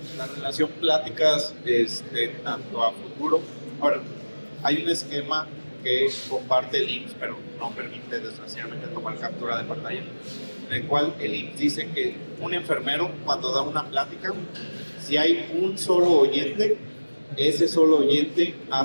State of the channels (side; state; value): both; inverted; correlation -1.00